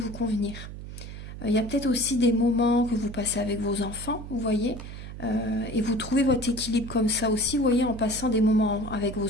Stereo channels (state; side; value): noise; right; hum, 11 dB below the sound